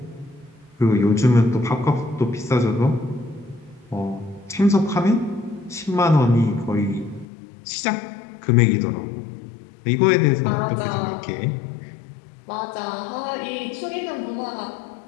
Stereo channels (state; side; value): drops out; right; at 7.2 s